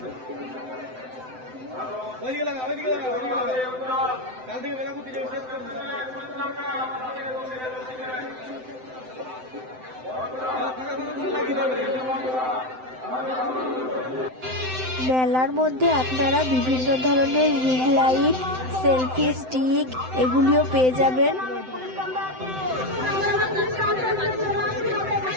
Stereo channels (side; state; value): left; late; 7.8 ms